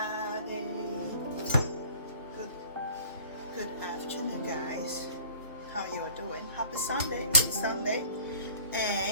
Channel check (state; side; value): inverted; both; correlation -0.49